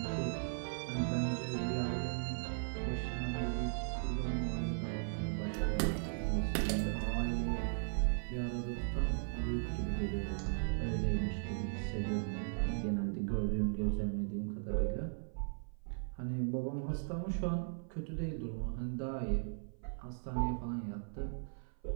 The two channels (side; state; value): left; silent; 53 dB below the other